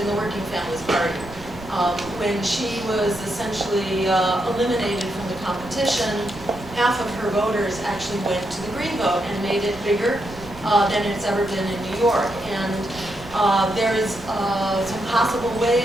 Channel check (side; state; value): right; noise; rumble, 17 dB below the sound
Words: the Working Families Party. When she was essentially eliminated from the competition, half of her voters actually went to the Green vote and made it bigger than it's ever been in New York. And there's some possible